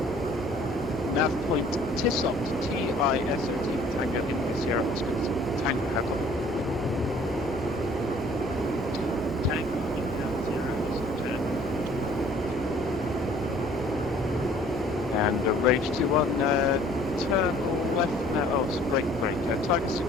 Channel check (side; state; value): both; normal; correlation 0.55